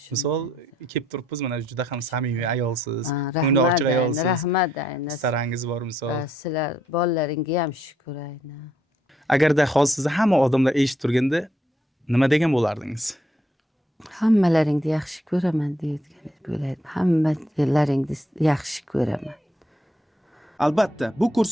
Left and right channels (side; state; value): both; normal; correlation 0.72